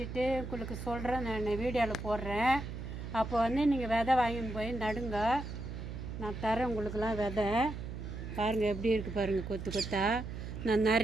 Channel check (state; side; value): noise; right; hum, 8 dB below the sound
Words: உங்களுக்கு சொல்கிறேன், நான் வீடியோவில் போடுறேன். அப்போ வந்து நீங்கள் விதை வாங்கின்னு போய் நடுங்க, நான் தரேன் உங்களுக்கெல்லாம் விதை. பாருங்கள் எப்படி இருக்குது பாருங்கள் கொத்து கொத்தா. நான்